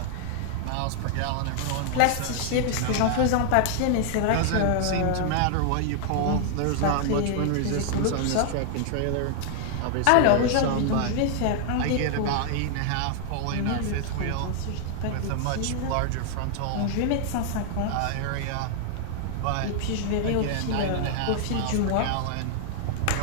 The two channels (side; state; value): both; different; correlation 0.00